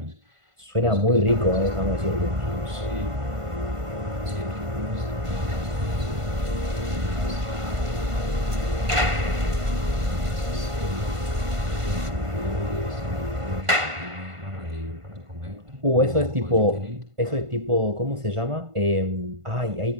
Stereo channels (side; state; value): left; late; 1.5 ms